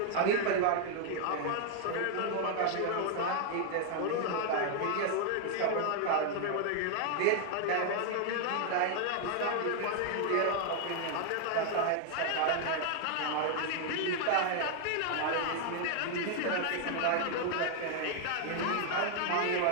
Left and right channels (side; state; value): both; different; correlation 0.00